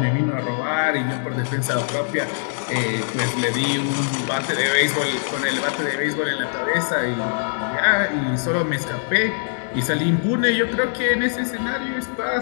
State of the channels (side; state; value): right; silent; digital silence